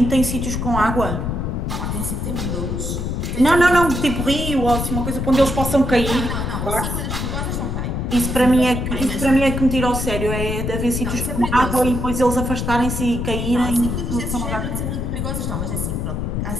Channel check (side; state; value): left; noise; rumble, 2 dB below the sound